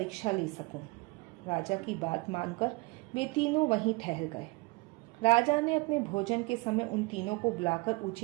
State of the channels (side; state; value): left; quieter; 25.3 dB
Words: ले सकूं। राजा की बात मानकर वे तीनों वहीं ठहर गए। राजा ने अपने भोजन के समय उन तीनों को बुलाकर